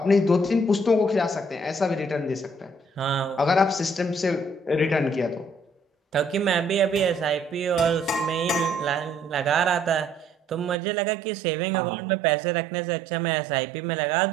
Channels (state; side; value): drops out; left; at 10.8 s